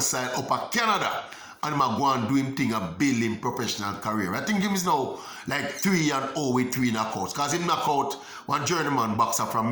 up at Canada. And him a go and do him thing and build him professional career. I think him is now like 3-0 with 3 knockouts. Because him knock out one journeyman boxer from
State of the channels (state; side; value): identical; both; correlation 1.00